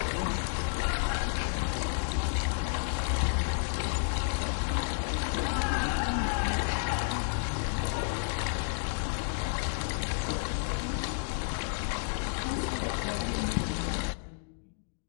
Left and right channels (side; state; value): right; silent; digital silence